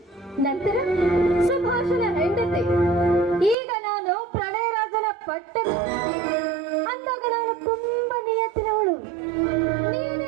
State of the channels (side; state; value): left; drops out; at 3.6 s